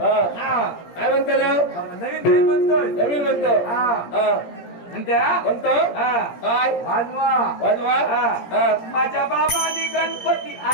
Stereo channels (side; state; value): right; late; 17 ms